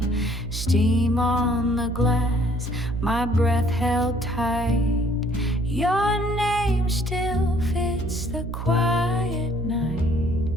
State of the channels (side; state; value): right; noise; hum, 5 dB below the sound